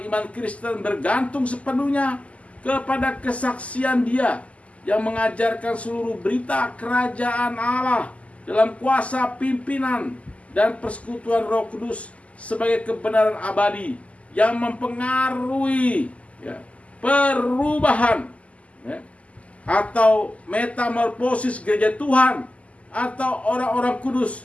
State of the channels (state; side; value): late; right; 0.066 ms